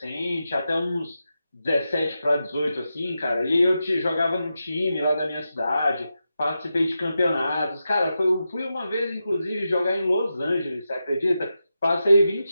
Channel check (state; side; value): inverted; both; correlation -0.89